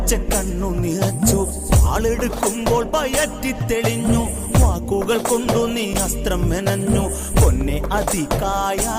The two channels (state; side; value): identical; both; correlation 1.00